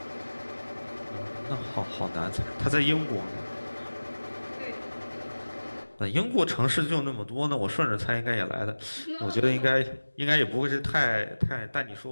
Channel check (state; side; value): inverted; both; correlation -1.00